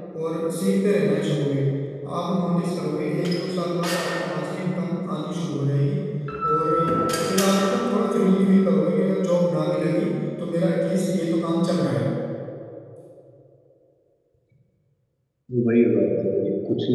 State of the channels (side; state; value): both; identical; correlation 1.00